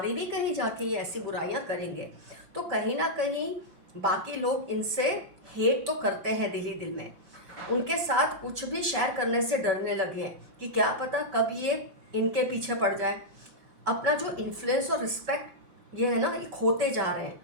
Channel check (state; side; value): late; left; 5.3 ms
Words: भी कहीं जाके ये ऐसी बुराइयां करेंगे। तो कहीं ना कहीं बाकी लोग इनसे हेट तो करते हैं दिल ही दिल में, उनके साथ कुछ भी शेयर करने से डरने लगे हैं कि क्या पता कब ये इनके पीछे पड़ जाए। अपना जो इन्फ्लुएंस और रिस्पेक्ट ये है ना, ये खोते जा रहे हैं,